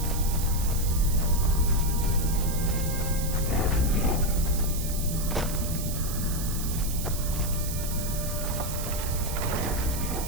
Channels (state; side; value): noise; right; hiss, 7 dB below the sound